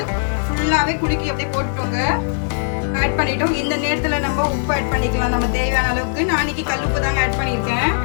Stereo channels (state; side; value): silent; right; digital silence